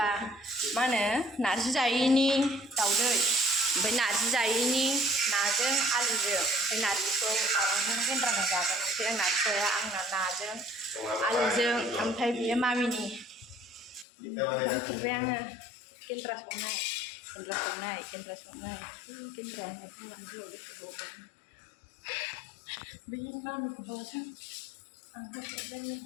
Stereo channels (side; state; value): right; drops out; at 14.1 s